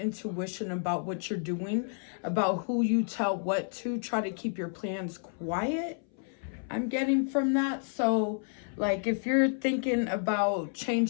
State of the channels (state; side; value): silent; right; 57 dB below the other